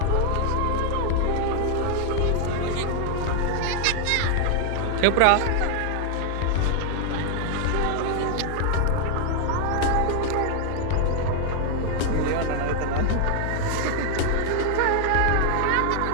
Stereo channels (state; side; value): different; both; correlation 0.00